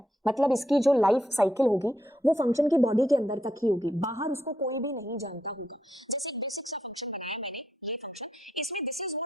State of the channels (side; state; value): both; normal; correlation 0.79